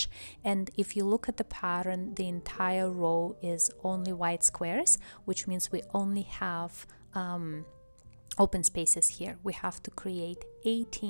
And if you look at the pattern, the entire row is only white squares, which means we only have open spaces here. We have to create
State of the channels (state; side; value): inverted; both; correlation -1.00